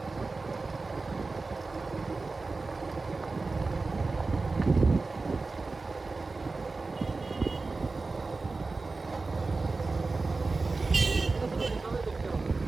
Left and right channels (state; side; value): quieter; left; 3.8 dB